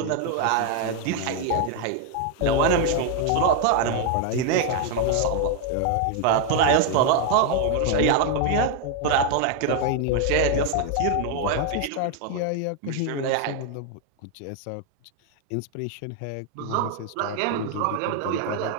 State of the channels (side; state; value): both; different; correlation 0.01